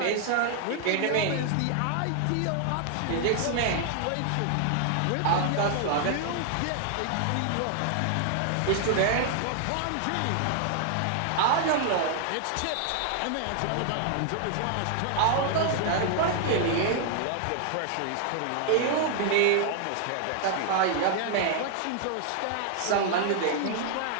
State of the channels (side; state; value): both; different; correlation 0.00